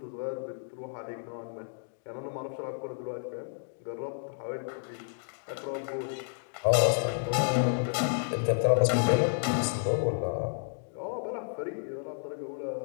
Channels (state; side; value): silent; right; digital silence